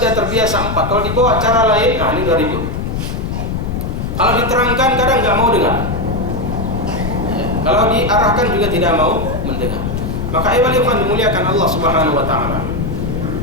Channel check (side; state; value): left; noise; rumble, 3 dB below the sound